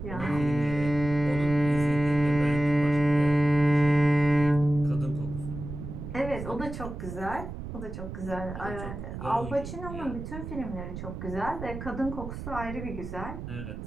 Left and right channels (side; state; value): right; noise; rumble, 8 dB below the sound